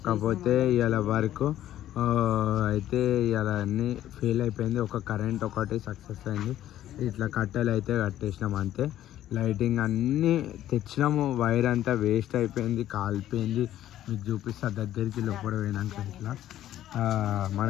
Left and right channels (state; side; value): quieter; right; 12.6 dB